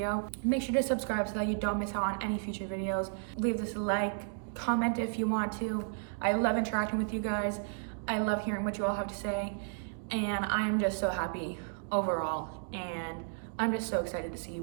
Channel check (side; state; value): left; silent; digital silence